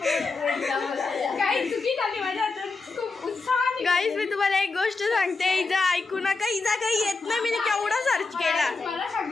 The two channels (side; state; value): right; quieter; 4.0 dB